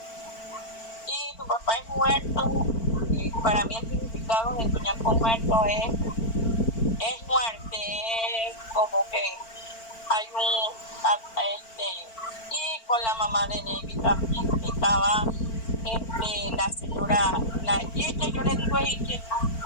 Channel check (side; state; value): right; late; 4.5 ms